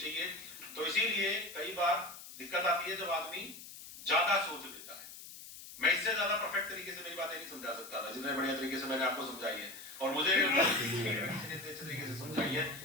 तो इसीलिए कई बार दिक्कत आती है जब आदमी ज्यादा सोच लेता है। मैं इससे ज्यादा परफेक्ट तरीके से मेरी बातें नहीं समझा सकता था जितने बढ़िया तरीके से मैंने आपको समझाई है, और मुझे अच्छे तरीके से समझाई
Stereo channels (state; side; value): noise; left; hiss, 14 dB below the sound